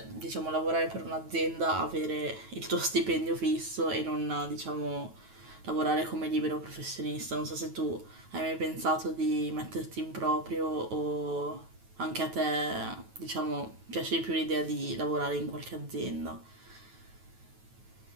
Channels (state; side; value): late; left; 9.2 ms